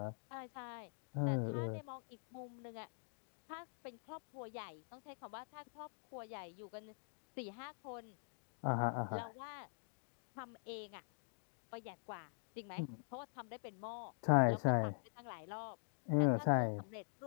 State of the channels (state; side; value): silent; right; digital silence